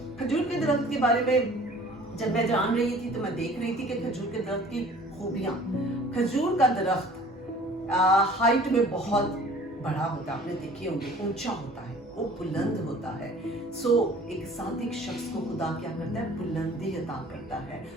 खजूर के दरख्त के बारे में जब मैं जान रही थी तो मैं देख रही थी कि खजूर के दरख्त की खूबियां। खजूर का दरख्त हाइट में बहुत बड़ा होता है, आपने देखे होंगे, ऊंचा होता है, वो बुलंद होता है। सो एक सादिक शख्स को खुदा क्या करता है, बुलंदी अता करता है,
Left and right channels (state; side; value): normal; both; correlation 0.49